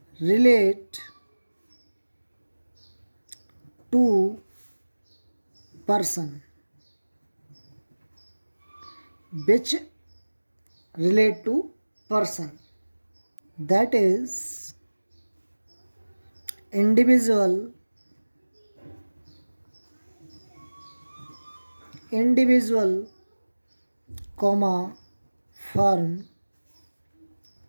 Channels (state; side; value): inverted; both; correlation -1.00